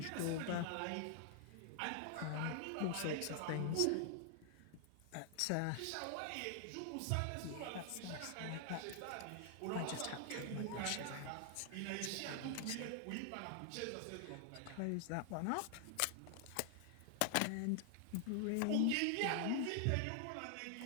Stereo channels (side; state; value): both; different; correlation 0.00